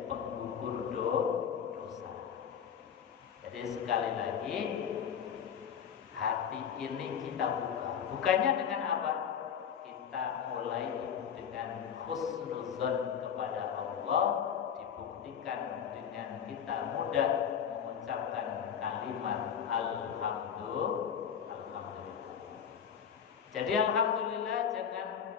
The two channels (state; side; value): quieter; right; 7.9 dB